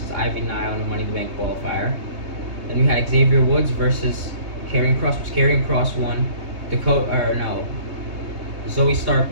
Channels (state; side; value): late; left; 3.3 ms